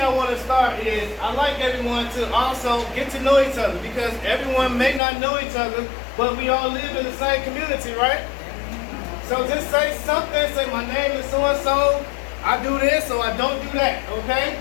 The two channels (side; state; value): right; drops out; at 5.0 s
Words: want to start is I like everyone to also get to know each other, because everyone may not know each other, but we all live in the same community, right? So just say something, say my name is so-and-so, I do this or I don't do that, okay?